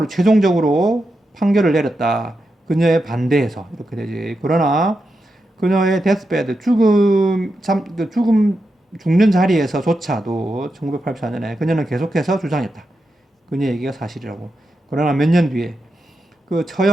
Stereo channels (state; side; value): normal; both; correlation 0.87